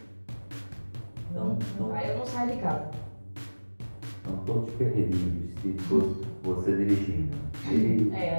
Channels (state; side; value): inverted; both; correlation -1.00